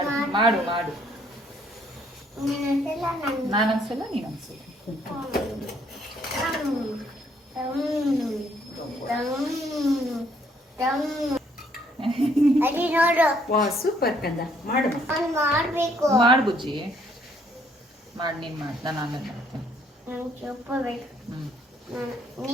ಮಾಡು ಮಾಡು. ನಾನೊಂದ್ಸಲ ನೀನೊಂದ್ಸಲ. ವಾ ಸೂಪರ್ ಕಂದ. ಮಾಡು ಮಾಡು ಬುಜ್ಜಿ, ಮಾಡಿ. ನೀನು ಮಾಡಿ, ನಾನು ಆಮೇಲೆ ಮಾಡ್ತೀನಿ.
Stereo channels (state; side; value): normal; both; correlation 0.66